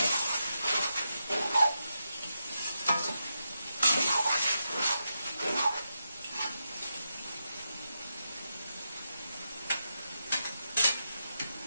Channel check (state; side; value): inverted; both; correlation -0.86